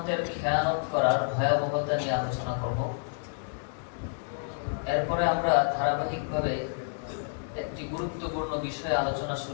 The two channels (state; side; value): silent; right; digital silence